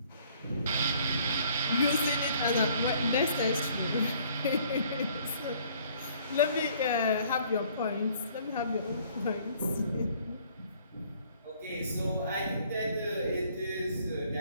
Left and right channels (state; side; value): inverted; both; correlation -0.59